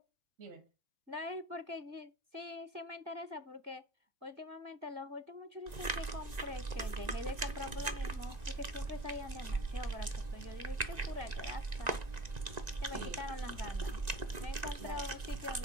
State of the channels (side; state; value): left; late; 1.9 ms